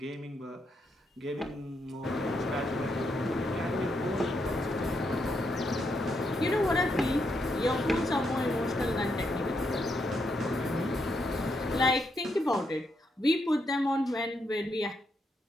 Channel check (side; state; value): both; normal; correlation 0.79